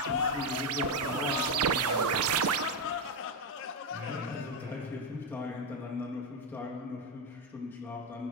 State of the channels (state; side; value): normal; both; correlation 0.05